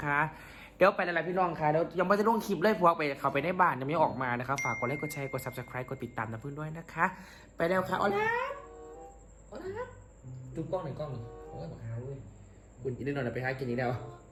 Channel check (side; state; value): both; identical; correlation 1.00